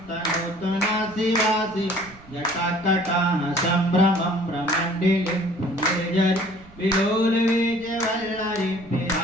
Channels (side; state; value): right; noise; rumble, 23 dB below the sound